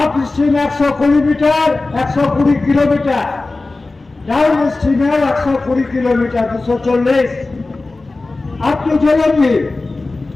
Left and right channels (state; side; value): quieter; right; 3.3 dB